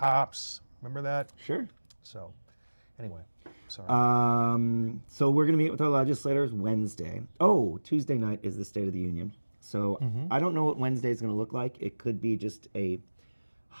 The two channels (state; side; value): inverted; both; correlation -1.00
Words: Remember that? Sure. So, anyway, sorry. So we're going to meet with our legislators Wednesday. Oh, Tuesday night is the State of the Union. So I don't know what Wednesday is going to look like. It could be just a